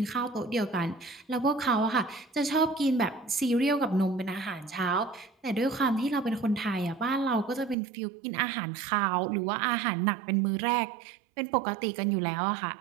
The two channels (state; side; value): drops out; left; at 7.8 s